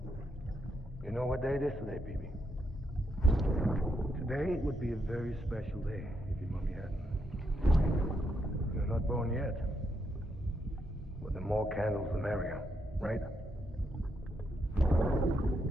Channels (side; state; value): both; normal; correlation 0.80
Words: You know what day it is today, BB? Today would be a very special day if your mommy hadn't. You're not born yet. But the more candles, the merrier, right?